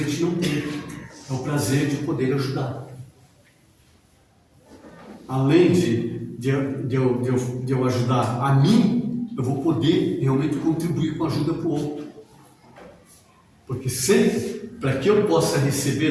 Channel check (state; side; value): identical; both; correlation 1.00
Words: gente não tem. É o prazer de poder ajudar. Além de eu ajudar a mim, eu vou poder realmente contribuir com a ajuda para o outro. Porque sempre, para que eu possa